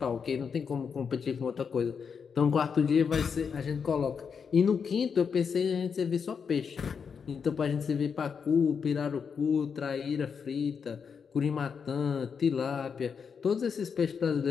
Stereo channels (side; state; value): right; quieter; 6.3 dB